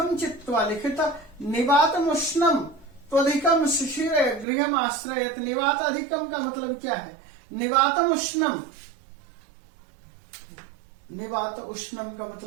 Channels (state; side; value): drops out; left; at 4.5 s